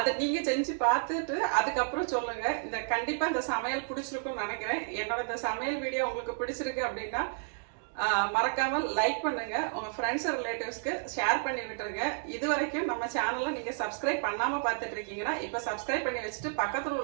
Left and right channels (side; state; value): left; silent; digital silence